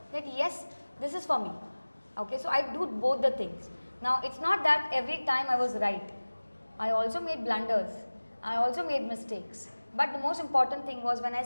that yes, this is for me. Okay, so I do both the things. Now it's not that every time I was right. I also made blunders. I also made mistakes. But the most important thing was when I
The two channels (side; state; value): both; inverted; correlation -1.00